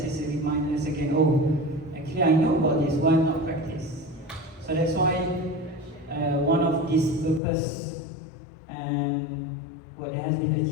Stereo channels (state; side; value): drops out; right; at 7.4 s